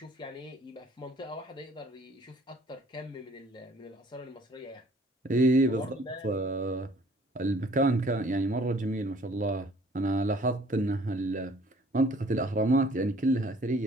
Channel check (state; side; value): normal; both; correlation 0.56